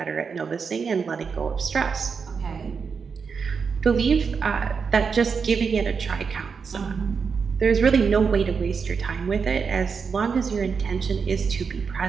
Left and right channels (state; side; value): quieter; left; 5.7 dB